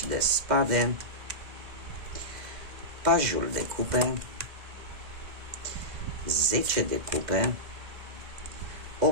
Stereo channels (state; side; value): late; left; 2.0 ms